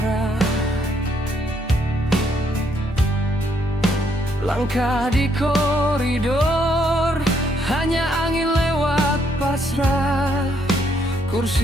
Langkah di koridor hanya angin lewat pasrah.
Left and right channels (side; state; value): both; normal; correlation 0.72